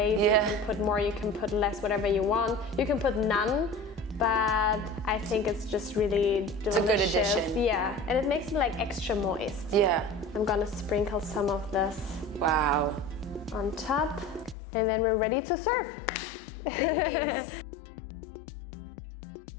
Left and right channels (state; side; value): drops out; right; at 14.6 s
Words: Yeah. You can put more, you can put less, whatever you want. You can put none, but I think it's just really delicious. It's a good addition. Yeah, and it makes it like extra moist. Yeah. I'm gonna sprinkle some of this on top, and then we're ready to serve. Thanks.